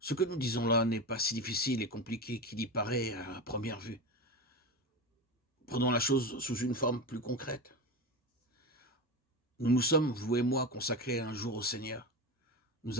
que nous disons là n'est pas si difficile et compliqué qu'il y paraît à première vue. Prenons la chose sous une forme plus concrète. Nous nous sommes, vous et moi, consacrés un jour au Seigneur.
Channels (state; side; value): normal; both; correlation 0.22